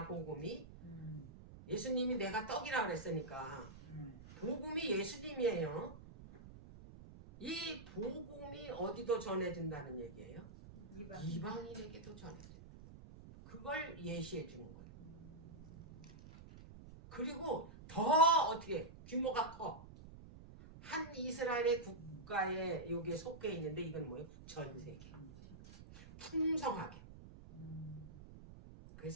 복음이. 예수님이 내가 떡이라 그랬으니까 복음이 예수님이에요. 이 복음이 어디도 전해진다는 얘기예요? 이방인에게도 전해져. 그걸 예시해 주는 거예요. 그리고 더 어떻게 규모가 커. 한 이스라엘의 국가에 여기에 속해 있는데 이건 뭐예요? 전 세계. 풍성하게.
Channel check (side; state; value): right; noise; rumble, 16 dB below the sound